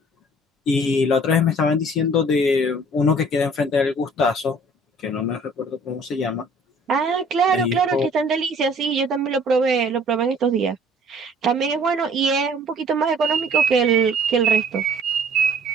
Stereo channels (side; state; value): both; normal; correlation 0.54